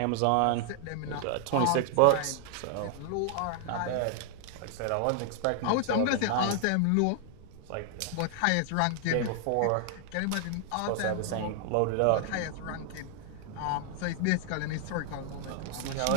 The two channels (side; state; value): both; different; correlation 0.00